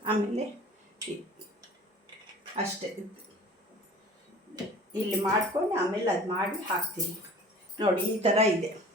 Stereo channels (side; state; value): both; normal; correlation 0.45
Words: ಆಮೇಲೆ ಅಷ್ಟೇ ಇಲ್ಲಿ ಮಾಡ್ಕೊಂಡು ಆಮೇಲೆ ಅದು ಮಾಡಿ ಹಾಕ್ತೀನಿ ನೋಡಿ. ಈ ಥರ ಇದೆ